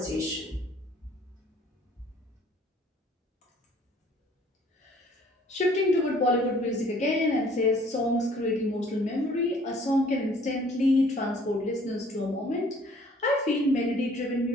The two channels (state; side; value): normal; both; correlation 0.57